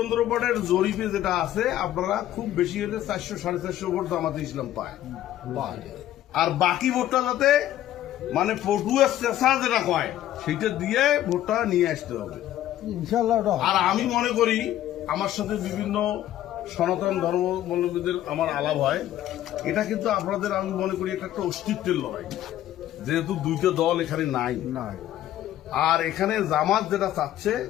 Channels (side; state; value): right; quieter; 12.8 dB